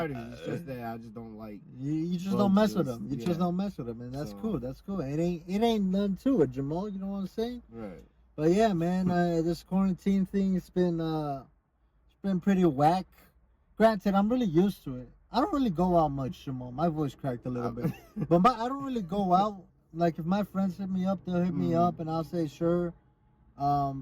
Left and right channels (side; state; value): both; identical; correlation 1.00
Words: It's just that I just don't like. You just don't mess with them. You just don't mess with them, and that's cool. That's cool. It ain't none to it, Jamal. You know what I'm saying? Right. But yeah, man, this quarantine thing, it's been pretty whack. Granted, I'm really used to it. I don't really go out much, Jamal. My voice cracked a little bit. But I don't really go out. Like, if my friends hit me up, they'll hit me up, and I'll say, sure.